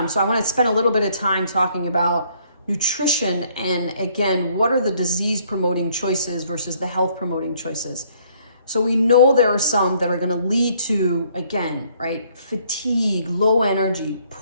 So I want to spend a little bit of time talking about nutrition and, again, what are the disease promoting choices versus the health promoting choices. So we know there are some that are going to lead to, again, right, fatigue, low energy,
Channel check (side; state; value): both; inverted; correlation -0.64